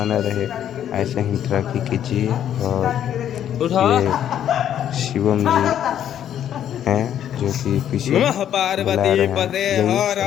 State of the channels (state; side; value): quieter; right; 10.3 dB